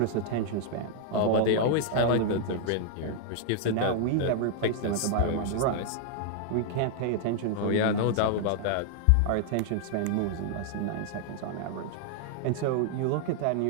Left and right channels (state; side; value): different; both; correlation -0.01